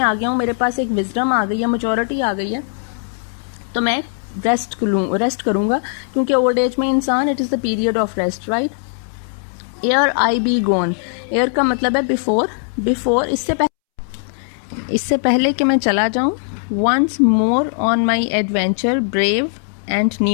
आ गया हूँ, मेरे पास एक विजडम आ गई है, मेच्योरिटी आ गई है, तो मैं रेस्ट करूंगा, क्योंकि ओल्ड एज में इंसान, it is the period of rest, right. Ere I be gone, ere का मतलब है बिफोर, इससे पहले कि मैं चला जाऊं। Once more on my adventure brave and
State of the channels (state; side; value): silent; right; 67 dB below the other